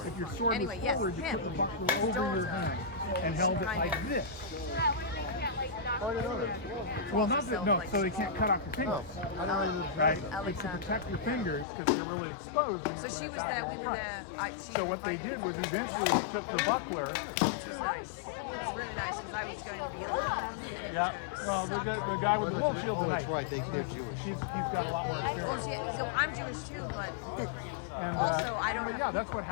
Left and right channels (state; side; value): drops out; right; at 11.7 s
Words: if your sword Anyway, was yes, forward, you him. put the buckler over your hand and held it like this. Well, not that, no, so they can't cut off your fingers, right? It's to protect your fingers because they're really exposed. So she was there, we were there. So what they did was eventually they took the buckler. Which was nice. It was really nice because I was going to be alone. Yeah. Well, the guy with the wolf shield Oh, tonight. that's right, they're Jewish. He's got a lot more experience. Well, so I'm Jewish too, but And, also I don't have yeah, that's what